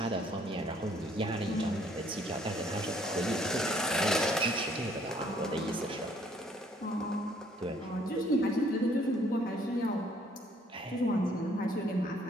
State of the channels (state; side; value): normal; both; correlation 0.63